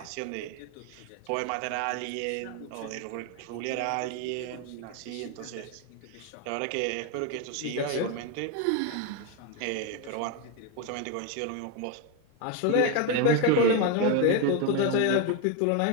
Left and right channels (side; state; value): both; different; correlation 0.01